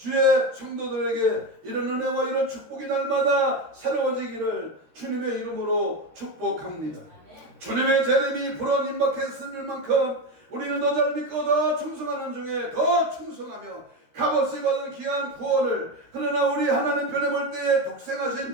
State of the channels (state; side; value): late; left; 13 ms